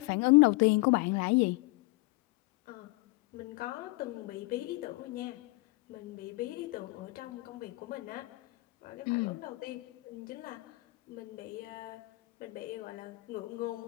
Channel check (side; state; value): right; quieter; 23.5 dB